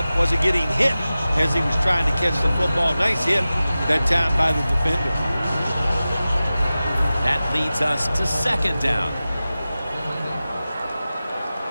wasn't getting hit as he was trying to catch the football. Nice hit that time by the defender. That leads us to 2nd down.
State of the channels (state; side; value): inverted; both; correlation -0.95